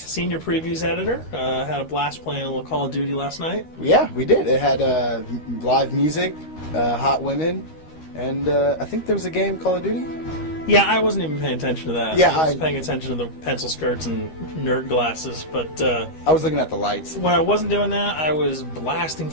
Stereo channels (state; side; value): late; right; 13 ms